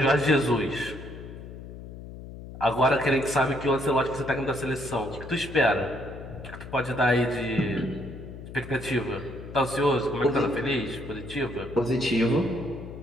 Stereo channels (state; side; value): noise; left; hum, 13 dB below the sound